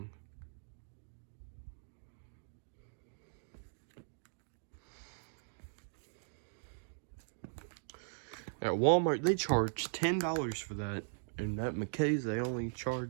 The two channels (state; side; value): silent; left; digital silence